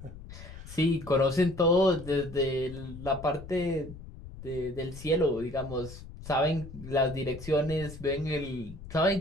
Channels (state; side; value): noise; left; rumble, 14 dB below the sound